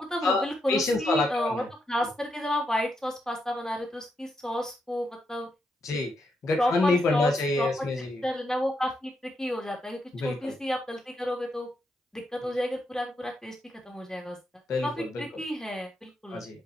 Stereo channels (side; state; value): both; normal; correlation 0.81